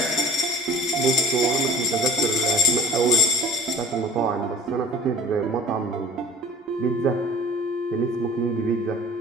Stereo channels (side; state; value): both; normal; correlation 0.44